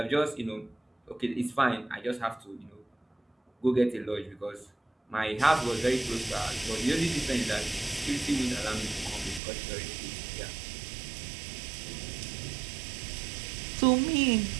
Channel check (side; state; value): left; drops out; at 9.4 s